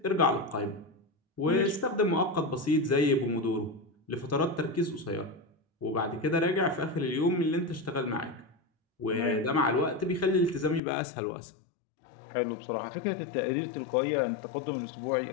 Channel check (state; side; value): drops out; right; at 10.8 s